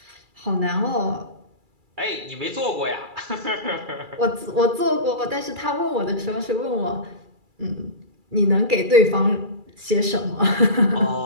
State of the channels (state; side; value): late; left; 2.3 ms